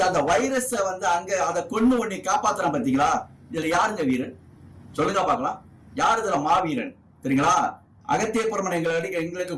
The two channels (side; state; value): both; identical; correlation 1.00